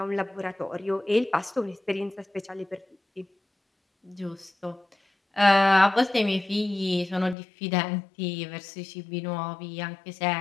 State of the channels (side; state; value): right; drops out; at 7.4 s